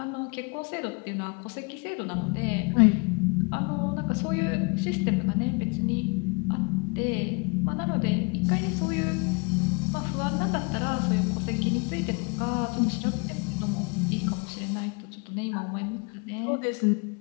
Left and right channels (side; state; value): right; quieter; 30.8 dB